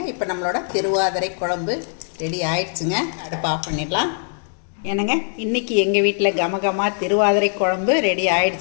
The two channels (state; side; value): silent; right; digital silence